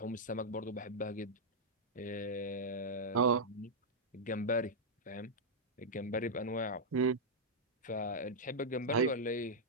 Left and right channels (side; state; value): both; normal; correlation -0.07